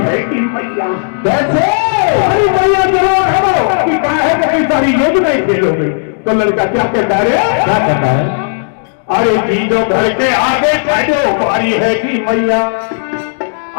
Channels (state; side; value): silent; right; digital silence